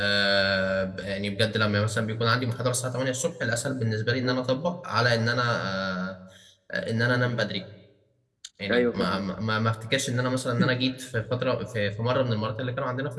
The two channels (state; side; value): identical; both; correlation 1.00